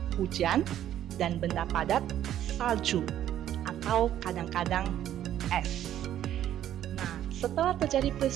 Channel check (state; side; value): quieter; left; 11.5 dB